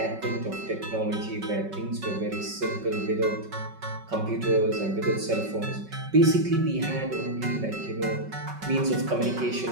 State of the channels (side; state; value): left; late; 5.3 ms